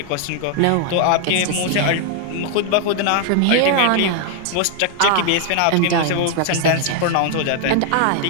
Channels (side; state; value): both; different; correlation 0.00